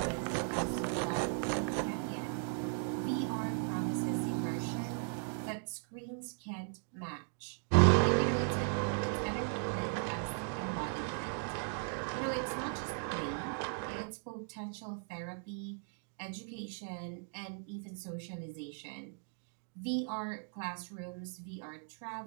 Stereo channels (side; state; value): left; silent; 53 dB below the other